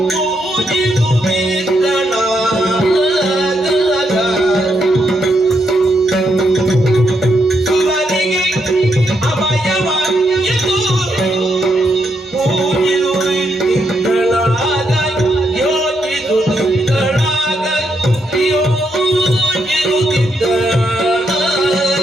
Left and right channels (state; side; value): normal; both; correlation 0.79